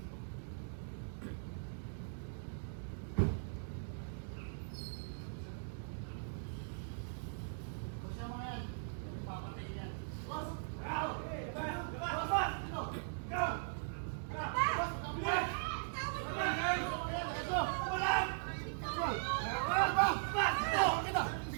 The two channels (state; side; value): silent; left; digital silence